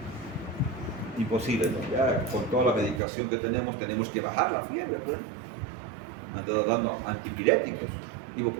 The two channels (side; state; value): left; drops out; at 3.0 s